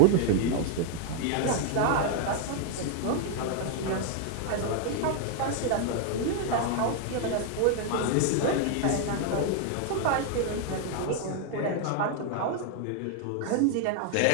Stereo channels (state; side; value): different; both; correlation 0.00